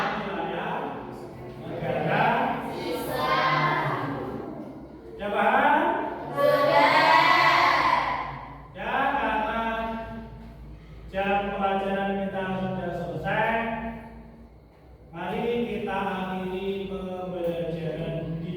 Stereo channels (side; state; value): both; identical; correlation 1.00